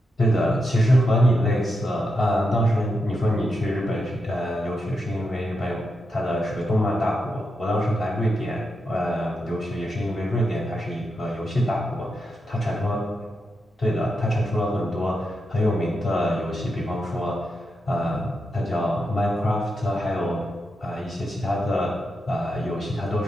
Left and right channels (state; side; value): normal; both; correlation 0.85